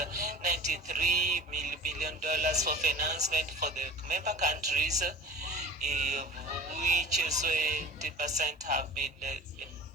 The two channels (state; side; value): normal; both; correlation 0.37